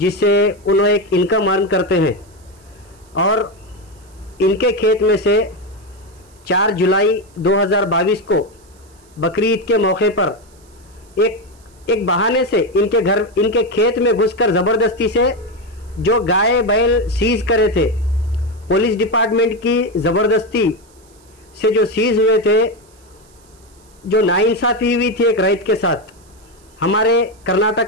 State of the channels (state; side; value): noise; right; hiss, 30 dB below the sound